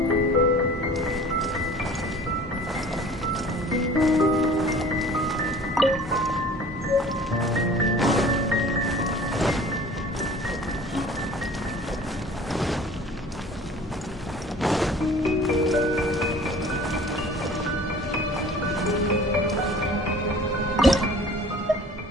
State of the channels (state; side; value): normal; both; correlation 0.46